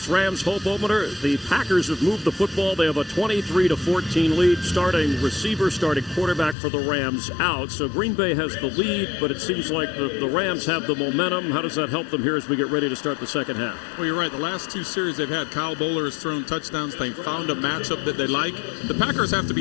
Rams hope opener. The Packers have moved the football. They have a 23-14 lead. Starting receiver, starting quarterback for the Rams out. So Green Bay has the lead, but it seems like the Rams have the momentum. How does that help them here as we get ready to start the second half? Well, you're right. The last 2 series they've had, Kyle Bowler has thrown touchdowns. They found a matchup that they like. The Packers have to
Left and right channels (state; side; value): drops out; right; at 6.6 s